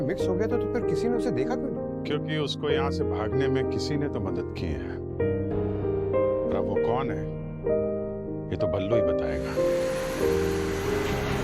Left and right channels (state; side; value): identical; both; correlation 1.00